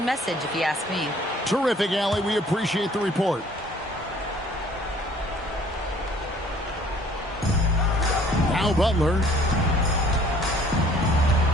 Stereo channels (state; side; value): normal; both; correlation 0.56